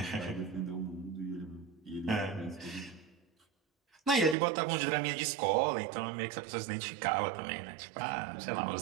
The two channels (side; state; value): left; drops out; at 4.4 s